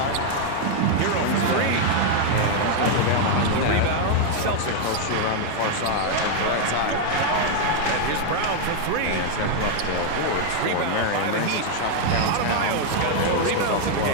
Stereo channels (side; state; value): both; different; correlation 0.00